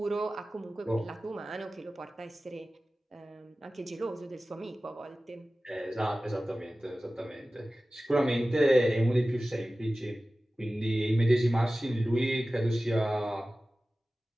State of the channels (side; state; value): both; normal; correlation 0.96